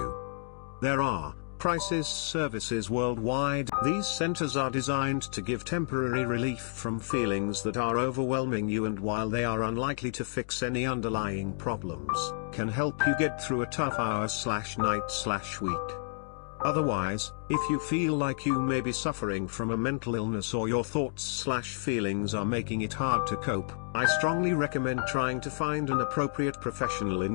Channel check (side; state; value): right; silent; digital silence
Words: There are crisis services worldwide. These centers are designed to give temporary relief from feelings that are overwhelming you, and while they are unlikely to fix any underlying problems, can help you get through a tough hour/night/week. Otherwise, if you feel like you may be suffering from a mental illness or your thoughts/feelings are making it hard to cope, I strongly recommend trying to find an appropriate professional